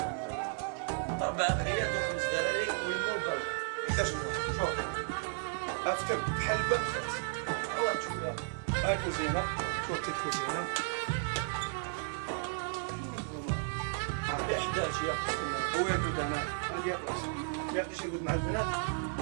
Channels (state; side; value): silent; left; 55 dB below the other